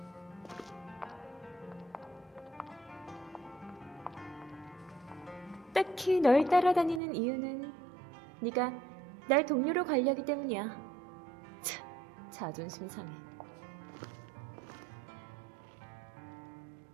딱히 널 따라다니는 이유는 네가 날 동료로 관리하기 때문이야. 참, 자존심 상해.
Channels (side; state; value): left; drops out; at 7.0 s